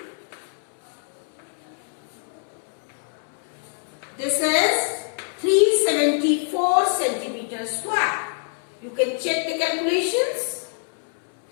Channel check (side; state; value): right; silent; 62 dB below the other